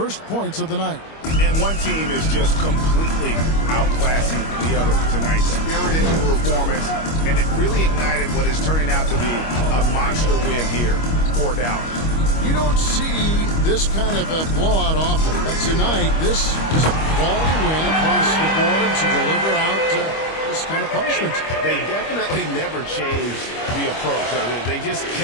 points of the night. And one team is just completely outclassing the other tonight. Spirited performance, and it really ignited what is turning out to be a monster win here for Dallas. You don't see this kind of a blowout often, but tonight this is a quality win across the board to deliver out this kind of punishment. They definitely never changed the approach. They just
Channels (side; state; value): right; late; 25 ms